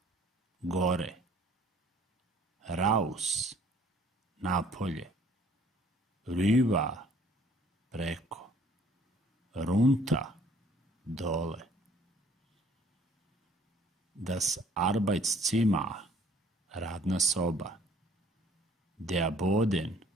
gore. Raus, napolje. Rüber, preko. Runter, dole. Das Arbeitszimmer, radna soba. Der Boden,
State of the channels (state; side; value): normal; both; correlation 0.58